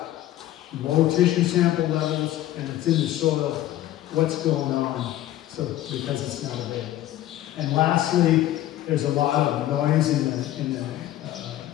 low tissue sample levels and it's in the soil, what's going on? So because it's not available. And lastly, there's a lot of noise in the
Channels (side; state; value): right; quieter; 13.8 dB